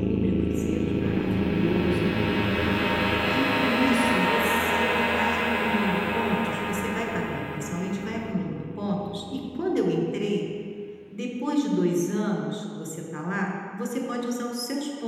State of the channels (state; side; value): identical; both; correlation 1.00